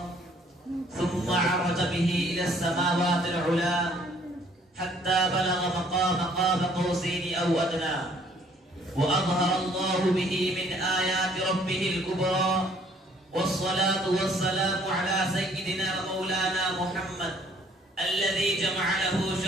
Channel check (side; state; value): both; normal; correlation 0.61